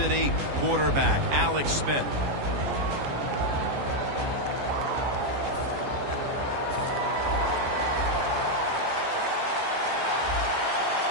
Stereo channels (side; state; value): left; late; 14 ms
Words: Quarterback Alex Smith.